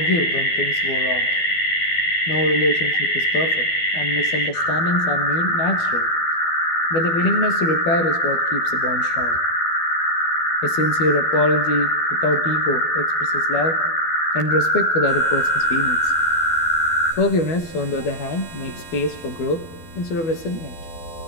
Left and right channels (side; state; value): right; late; 12 ms